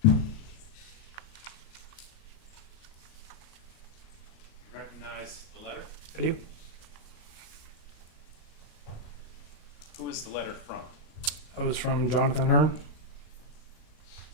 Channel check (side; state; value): right; late; 38 ms